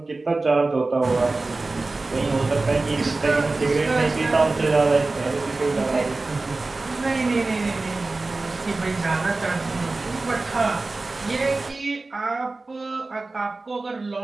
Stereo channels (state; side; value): quieter; left; 3.4 dB